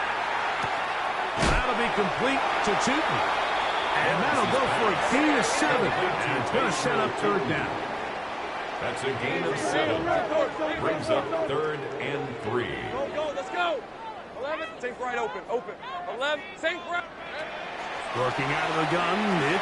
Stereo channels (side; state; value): both; identical; correlation 1.00